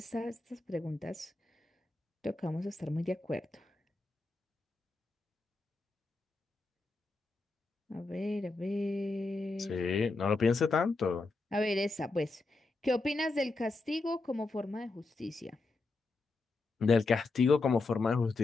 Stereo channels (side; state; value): right; quieter; 3.5 dB